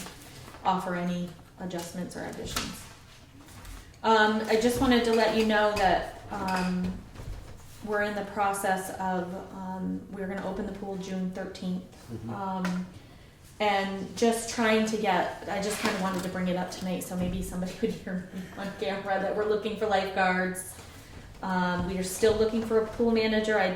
offer any adjustments or additions. I just wanted to let you know that we're in the process of, we're gonna open the pool June 13th. And just trying to get, I just kind of wanted to bring it up tonight so maybe somebody would hear me on camera that we're looking for lifeguards. We are still looking for a pool manager. I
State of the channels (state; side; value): identical; both; correlation 1.00